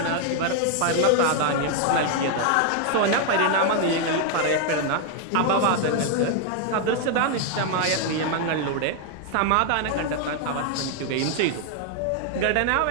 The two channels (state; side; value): different; both; correlation 0.00